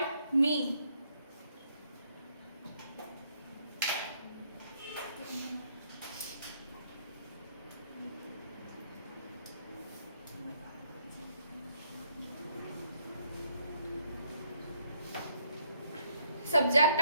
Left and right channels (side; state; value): both; inverted; correlation -0.68